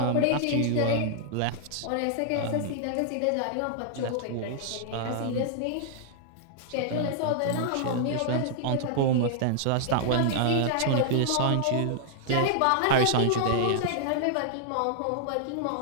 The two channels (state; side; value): different; both; correlation -0.01